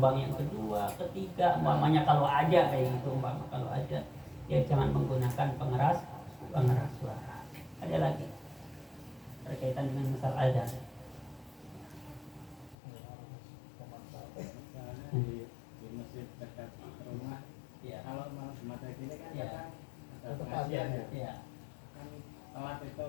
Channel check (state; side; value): drops out; right; at 12.8 s